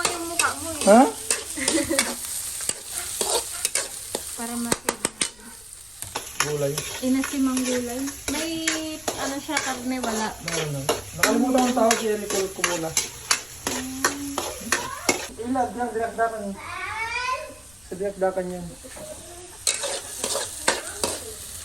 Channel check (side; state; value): left; noise; rumble, 26 dB below the sound